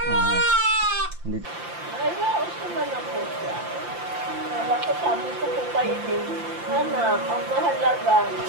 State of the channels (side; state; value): left; late; 5.8 ms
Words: Hindi. Ay, naos naman ako siya. Ako sabi ko po kayo din. Anak, ang mahalaga,